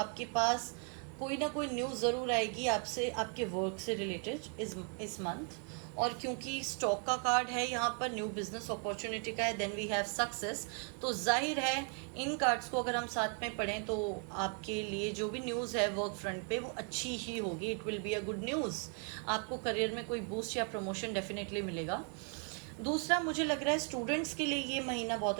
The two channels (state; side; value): quieter; left; 38.7 dB